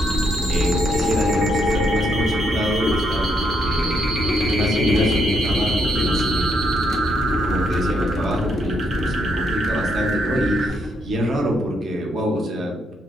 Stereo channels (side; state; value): both; normal; correlation 0.76